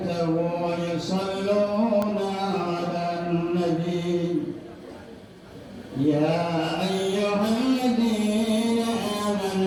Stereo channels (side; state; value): both; identical; correlation 1.00